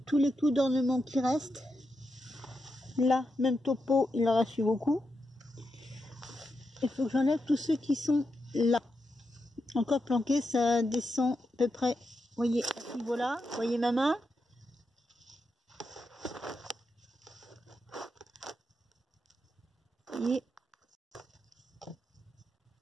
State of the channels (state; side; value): normal; both; correlation 0.86